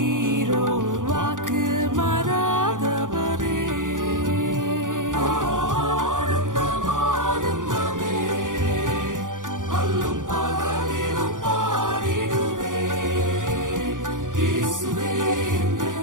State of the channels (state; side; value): late; left; 0.88 ms